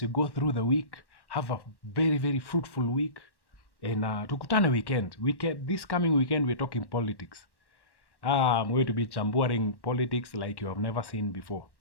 you go through the week. Have a very, very fruitful week. And tukutane weekend. This coming weekend we're talking politics. I'm going to be chambuaring politics like you have never seen before.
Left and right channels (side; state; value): right; late; 1.1 ms